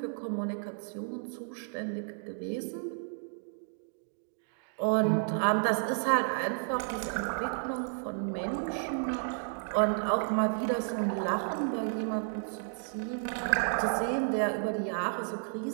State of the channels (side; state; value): left; silent; digital silence